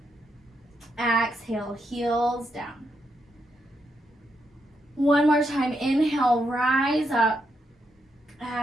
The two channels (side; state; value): both; normal; correlation 0.81